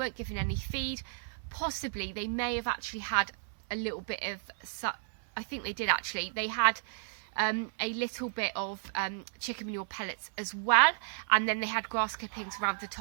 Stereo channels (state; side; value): silent; left; 56 dB below the other